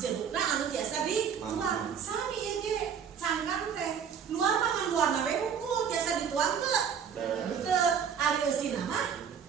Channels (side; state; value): left; quieter; 7.5 dB